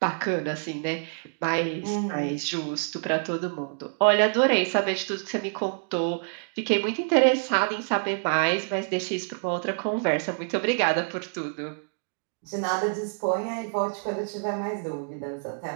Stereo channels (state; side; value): silent; left; 56 dB below the other